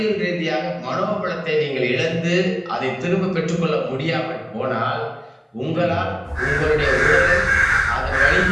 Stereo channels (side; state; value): both; identical; correlation 1.00